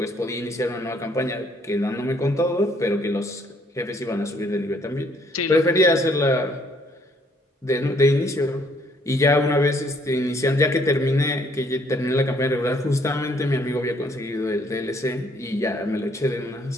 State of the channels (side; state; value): both; normal; correlation 0.65